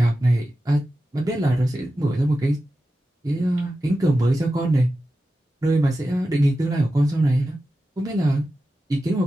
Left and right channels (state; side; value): normal; both; correlation 0.92